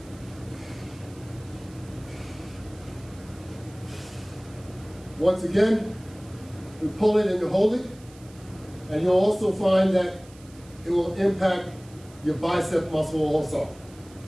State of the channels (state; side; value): noise; right; hiss, 24 dB below the sound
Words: Once again, you pull it and you hold it, and you'll also find that it will impact your bicep muscle also.